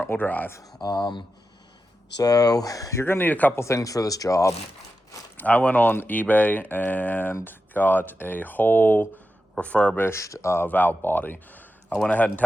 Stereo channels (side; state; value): both; normal; correlation 0.90